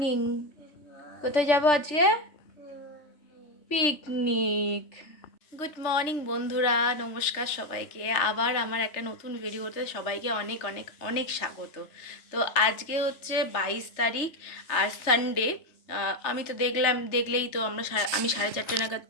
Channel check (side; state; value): right; late; 3.4 ms